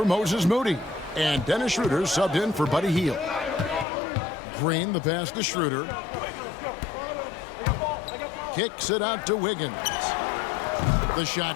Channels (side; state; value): right; drops out; at 3.9 s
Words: Moses Moody. And Dennis Schroeder subbed in for Buddy Hield. screen, the pass to Schroeder. Kicks it out to Wiggins. The